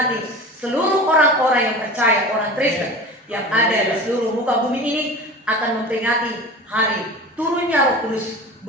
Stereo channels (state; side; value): normal; both; correlation 0.35